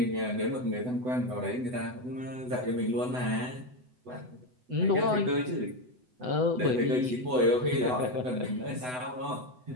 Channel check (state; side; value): late; left; 8.0 ms